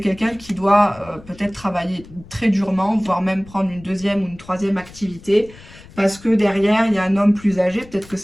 qui doit peut-être travailler très durement, voire même prendre une deuxième ou une troisième activité, parce que derrière, il y a un homme plus âgé, peut-être que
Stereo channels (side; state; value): left; noise; rumble, 21 dB below the sound